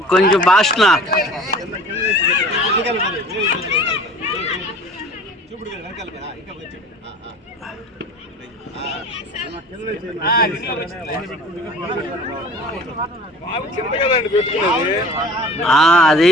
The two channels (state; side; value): normal; both; correlation 0.44